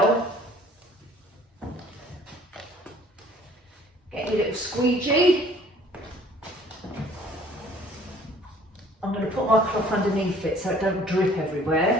Get your little squeegee. I'm going to put my cloth underneath it so it don't drip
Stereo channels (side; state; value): both; normal; correlation 0.54